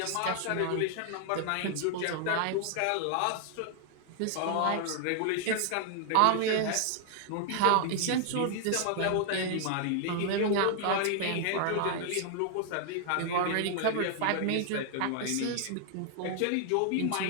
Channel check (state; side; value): different; both; correlation 0.00